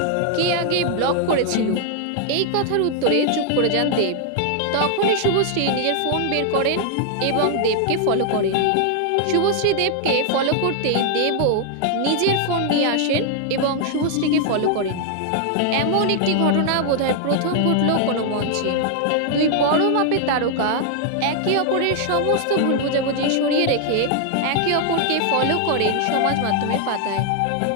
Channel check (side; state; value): both; different; correlation 0.00